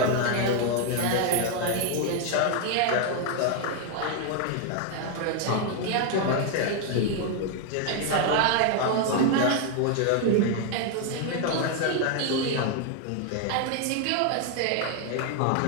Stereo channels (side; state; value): both; different; correlation 0.01